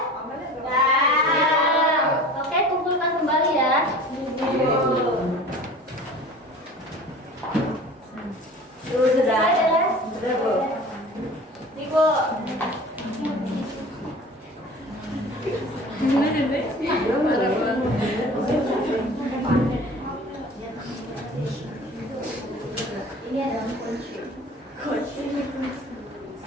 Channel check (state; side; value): normal; both; correlation 0.42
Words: Ya. Oke, kumpulkan kembali ya. Sudah. Ya. Sudah, Bu. Ibu. Ini adalah kunci.